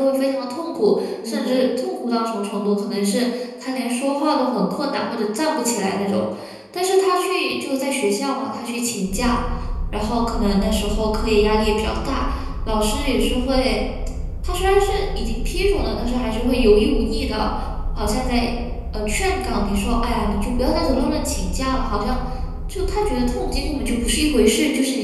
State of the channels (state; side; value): identical; both; correlation 1.00